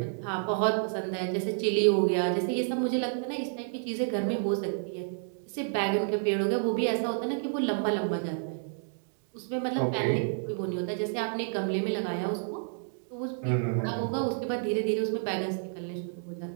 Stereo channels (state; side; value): silent; left; digital silence